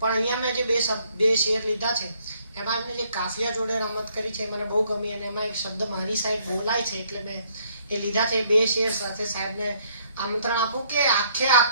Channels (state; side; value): inverted; both; correlation -0.67